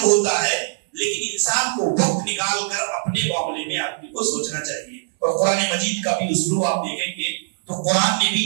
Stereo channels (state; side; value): silent; left; 65 dB below the other